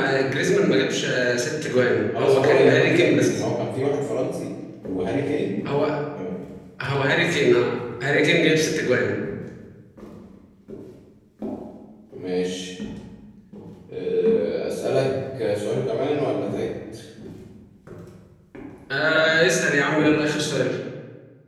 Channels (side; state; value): both; identical; correlation 1.00